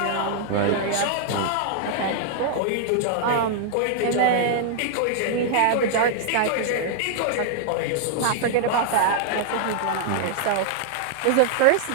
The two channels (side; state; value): both; different; correlation -0.01